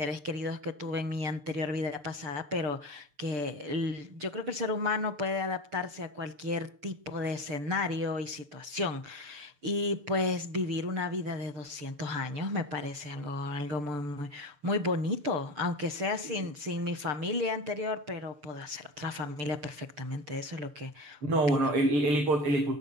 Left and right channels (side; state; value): left; late; 6.7 ms